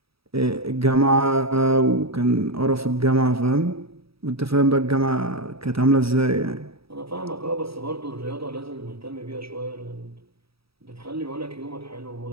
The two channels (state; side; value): late; left; 0.77 ms